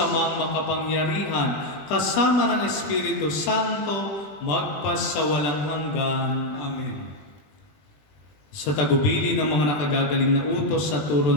makapangyarihan, kasama ng Espiritu Santo, magpasawalang hanggan. Amen. Sa tagubili ng mga nakagagaling na utos sa turo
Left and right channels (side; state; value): right; late; 20 ms